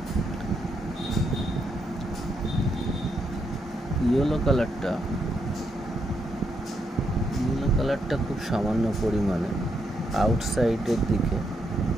ইয়েলো কালারটা খুব সামান্য পরিমাণে আউটসাইডের দিকে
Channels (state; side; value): normal; both; correlation 0.79